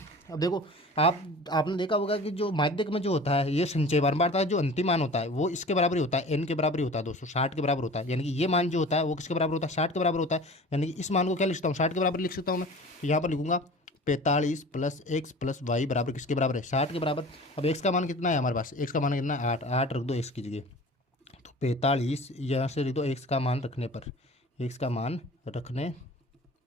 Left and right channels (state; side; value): normal; both; correlation 0.41